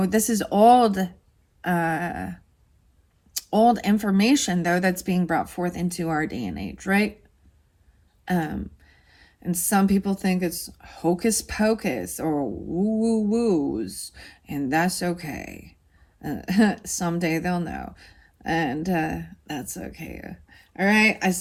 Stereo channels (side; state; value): both; identical; correlation 1.00